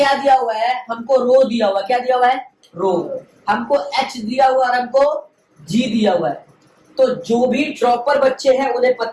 दिया हुआ है, हमको रो दिया हुआ है, क्या दिया हुआ है, रो। हमको H दिया हुआ है और हमको G दिया हुआ है। तो जो भी ड्रॉपर बच्चे हैं उन्हें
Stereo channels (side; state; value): both; identical; correlation 1.00